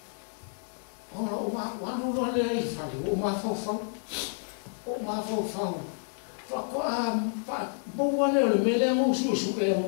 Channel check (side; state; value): right; silent; 58 dB below the other